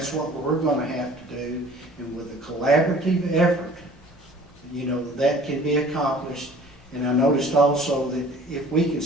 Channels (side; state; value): both; normal; correlation 0.49